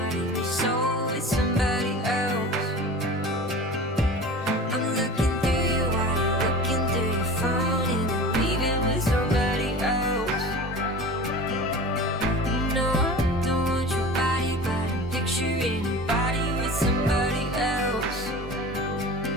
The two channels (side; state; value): both; normal; correlation 0.36